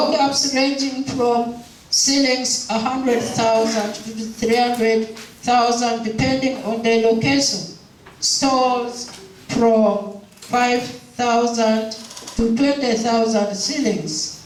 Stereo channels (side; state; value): both; identical; correlation 1.00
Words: ranging from ceilings 100,000 to 300,000 depending on the location, stores from 5,000 to 20,000 ceilings.